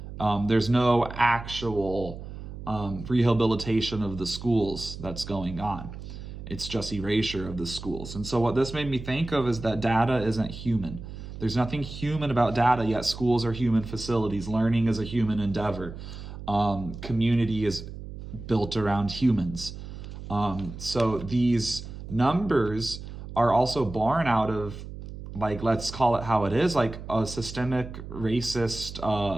There's no actual rehabilitation of the schools that's going on. It's just erasure of the schools. And so what this made me think of is that data isn't human. There's nothing human about data, yet schools are human facilities. Learning is a human endeavor. Community is built around humans. So these numbers are also born out of, like, let's call it how it is, like a systemic racist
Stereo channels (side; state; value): right; noise; hum, 11 dB below the sound